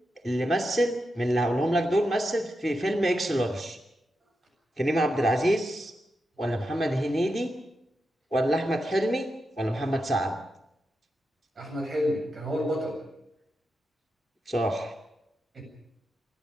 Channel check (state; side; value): normal; both; correlation 0.88